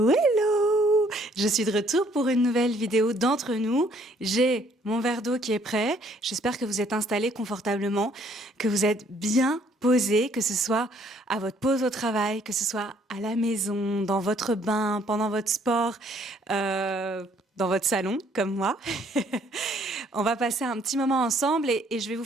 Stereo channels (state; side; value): normal; both; correlation 0.63